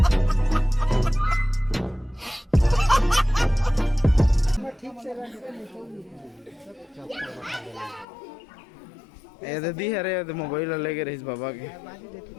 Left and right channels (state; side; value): drops out; right; at 8.1 s